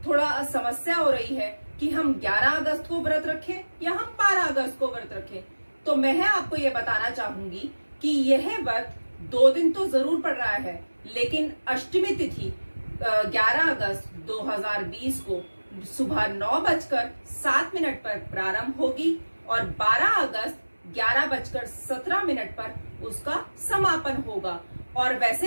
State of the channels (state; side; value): inverted; both; correlation -1.00